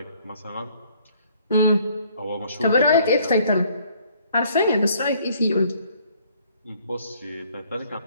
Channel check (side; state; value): both; inverted; correlation -0.61